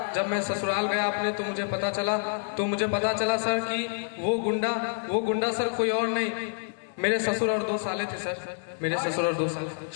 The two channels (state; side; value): silent; right; 60 dB below the other